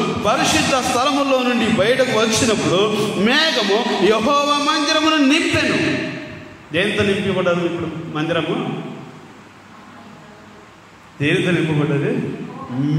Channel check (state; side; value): identical; both; correlation 1.00